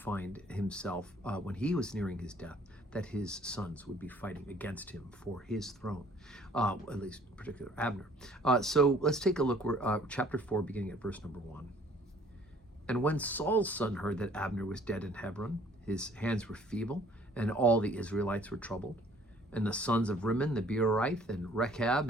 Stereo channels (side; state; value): both; normal; correlation 0.57